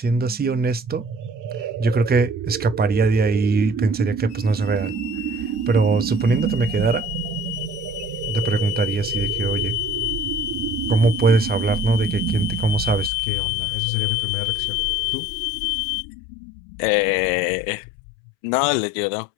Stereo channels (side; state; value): right; drops out; at 13.1 s